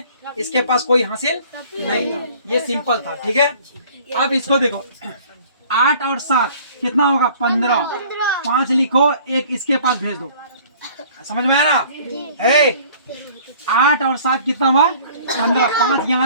इसके पास कोई हासिल नहीं था, ये सिंपल था। ठीक है, अब इसको देखो, 8 और 7 कितना होगा? 15। 5 लिखो, 1 इसके पास भेज दो। समझ में आया ना? 8 और 7 कितना हुआ? 15। 5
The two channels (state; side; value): inverted; both; correlation -0.51